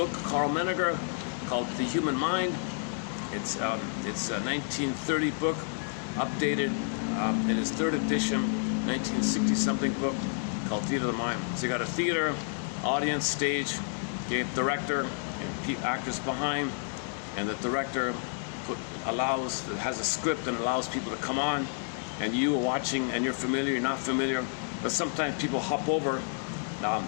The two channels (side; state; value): right; silent; 58 dB below the other